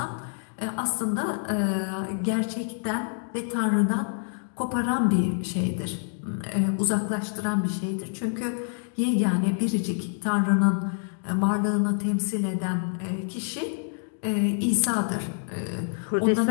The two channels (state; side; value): silent; right; digital silence